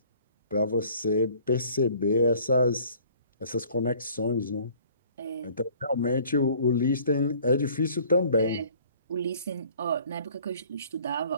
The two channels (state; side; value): inverted; both; correlation -0.54